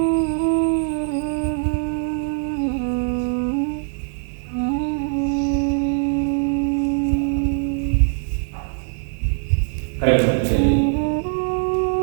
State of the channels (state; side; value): silent; left; 60 dB below the other